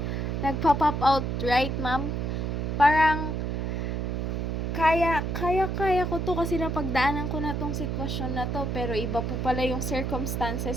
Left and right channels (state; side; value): noise; right; hum, 1 dB below the sound